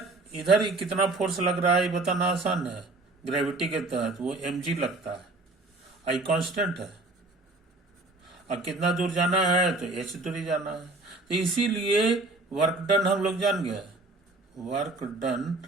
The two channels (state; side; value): quieter; left; 3.0 dB